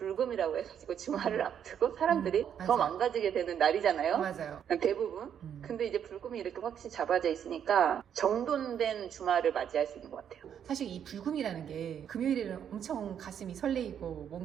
해가지고 주말을 앞두고 사람들이 더 망가지게 되는 날이잖아요. 맞아요. 대부분. 근데 이제 불금이 이렇게 확실히 잡아져 있으니까 정돈된 주말을 맞이할 수 있는 것 같아요. 사실 이 불금이라는 게 금요일에는 엄청 가슴이 설레이고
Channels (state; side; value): quieter; left; 8.8 dB